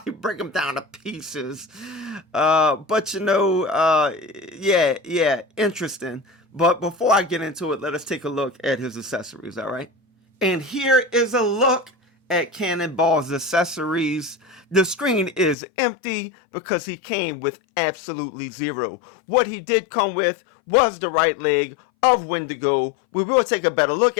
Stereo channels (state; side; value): drops out; right; at 15.6 s